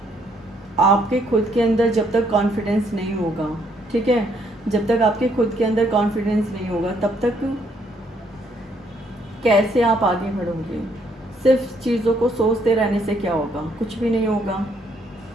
आपके खुद के अंदर जब तक कॉन्फिडेंस नहीं होगा, ठीक है, जब तक आपके खुद के अंदर कॉन्फिडेंस नहीं होगा तब तक कैसे आप आगे बढ़ोगे। सिर्फ चीज़ों को सोचते रहने से क्या होगा, कुछ भी नहीं होगा।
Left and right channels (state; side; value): normal; both; correlation 0.69